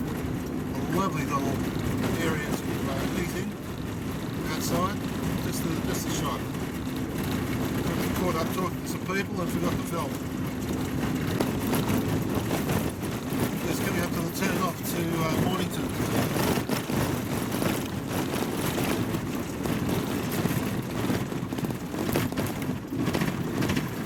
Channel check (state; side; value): identical; both; correlation 1.00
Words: lovely little area to eat in outside. Just a shot. Got caught up talking to some people and forgot to film.